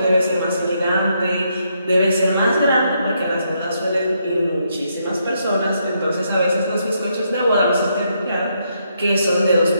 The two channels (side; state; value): both; inverted; correlation -0.77